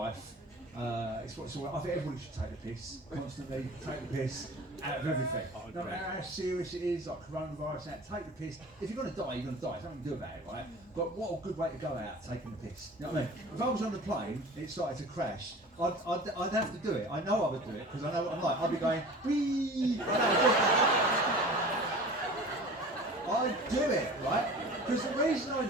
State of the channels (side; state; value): both; normal; correlation 0.40